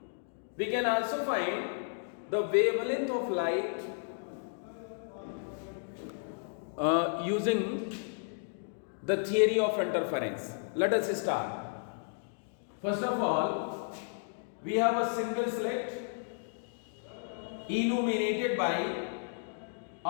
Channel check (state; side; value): silent; right; digital silence